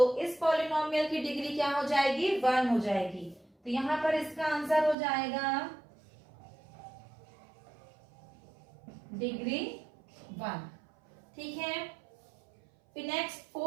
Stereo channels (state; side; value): drops out; left; at 5.0 s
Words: इस पॉलिनोमियल की डिग्री क्या हो जाएगी, 1 हो जाएगी। तो यहाँ पर इसका आंसर हो जाएगा डिग्री 1। ठीक है, फिर नेक्स्ट